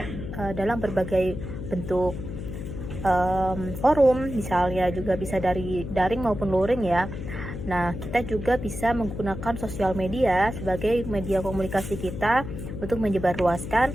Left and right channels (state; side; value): noise; left; hum, 7 dB below the sound